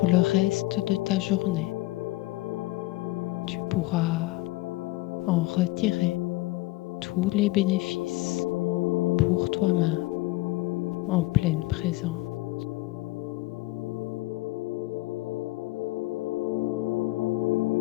le reste de ta journée. Tu pourras en retirer tous les bénéfices pour toi-même en pleine présence.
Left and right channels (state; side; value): quieter; right; 19.7 dB